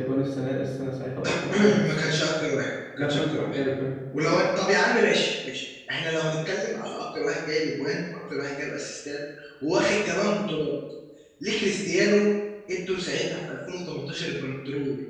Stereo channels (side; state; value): both; identical; correlation 1.00